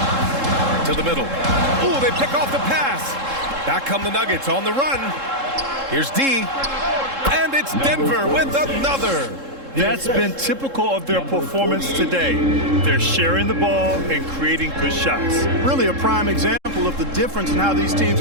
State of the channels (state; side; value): late; left; 3.7 ms